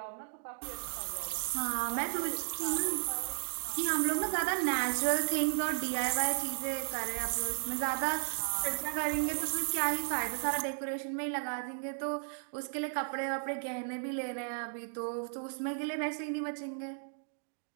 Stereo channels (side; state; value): left; silent; digital silence